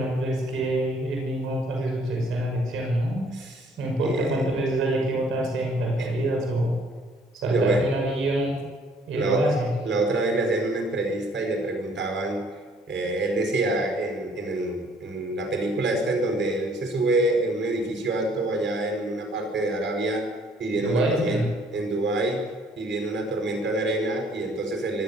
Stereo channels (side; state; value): both; normal; correlation 0.61